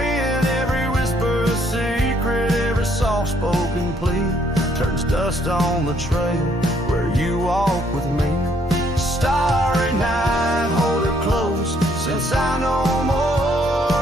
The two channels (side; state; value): both; normal; correlation 0.67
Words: Every whisper a secret, every soft-spoken plea turns dust on the trail where you walk with me. Starry night, hold her close, since I no